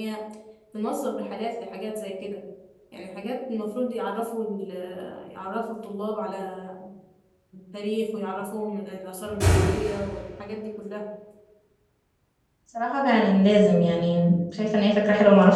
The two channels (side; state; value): both; identical; correlation 1.00